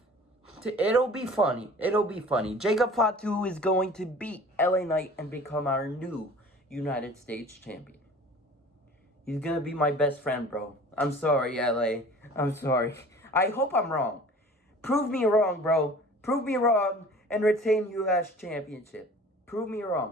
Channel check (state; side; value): normal; both; correlation 0.45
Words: It'll be funny. It'll be funny. Jacob Fatu is going to beat LA Knight and become our new United States champion. He's gonna be my best friend, bro. I'm sorry, LA. I'm sorry. I hope I'm wrong. Prove me wrong, bro. Prove me wrong and retain US Championship. Prove me